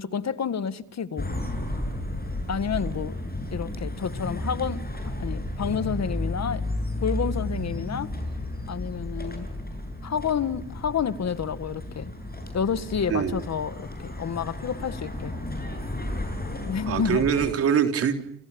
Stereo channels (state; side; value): normal; both; correlation 0.26